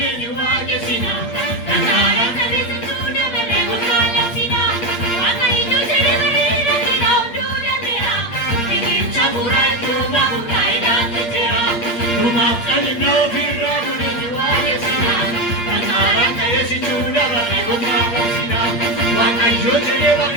ni wajesina Nangara kalisuna barego salasina Wangai jujere barira kira undura mera Nigi chaburai tuma ungai dante tera Tuma salino firramune ni wajesina Nangara kalisuna barego salasina Wangai jujere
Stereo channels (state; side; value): late; right; 8.6 ms